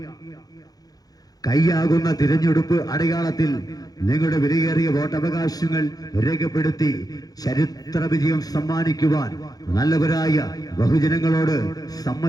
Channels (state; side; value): late; right; 0.18 ms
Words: കൈയാകുന്ന തിരഞ്ഞെടുപ്പ് അടയാളത്തിൽ നിങ്ങളുടെ വിലയേറിയ വോട്ടവകാശങ്ങൾ രേഖപ്പെടുത്തി ചരിത്ര വിജയം സമ്മാനിക്കുവാൻ നല്ലവരായ ബഹുജനങ്ങളോട്,